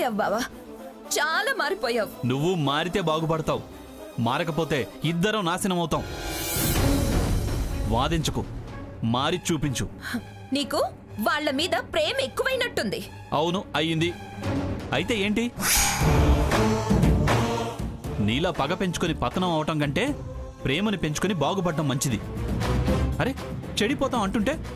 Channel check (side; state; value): both; identical; correlation 1.00